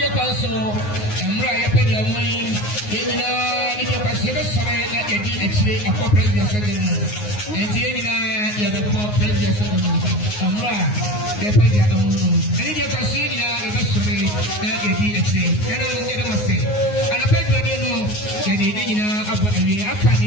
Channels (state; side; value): late; right; 9.6 ms